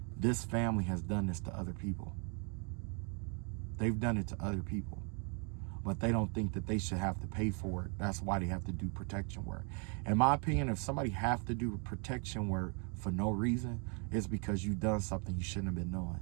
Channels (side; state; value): left; quieter; 37.9 dB